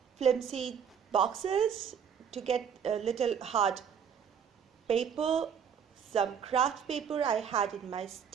flimsy boxes to get a little hard paper, some craft paper I had in my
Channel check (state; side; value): quieter; left; 7.6 dB